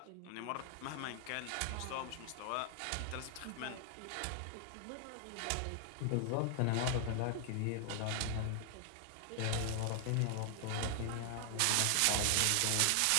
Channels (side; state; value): both; different; correlation 0.00